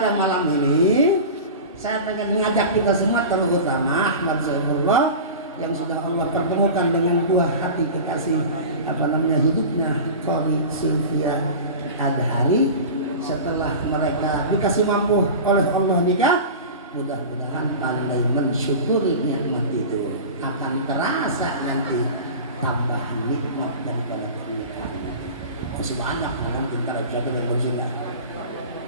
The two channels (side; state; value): both; inverted; correlation -0.32